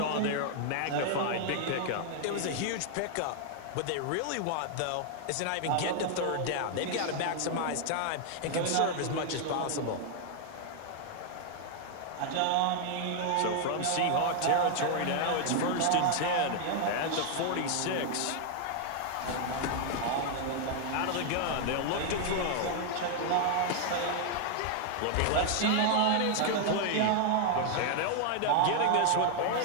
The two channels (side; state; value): both; different; correlation 0.00